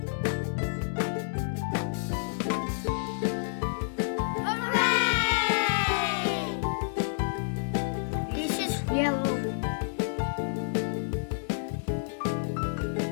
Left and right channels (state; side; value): silent; right; 58 dB below the other